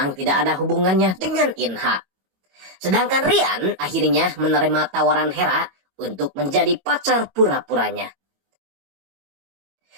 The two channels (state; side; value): late; left; 22 ms